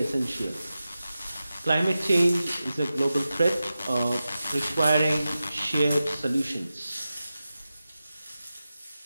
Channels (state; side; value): inverted; both; correlation -0.93